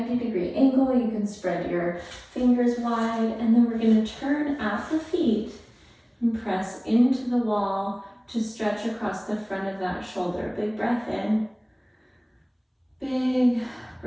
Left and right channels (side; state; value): both; identical; correlation 1.00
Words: angle. You can spread your fingers wide, and then we're going to turn at the feet and press into the wall to stretch across the front of that shoulder. Big breath in, big